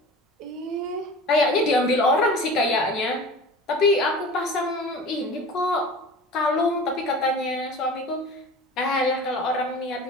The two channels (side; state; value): both; normal; correlation 0.38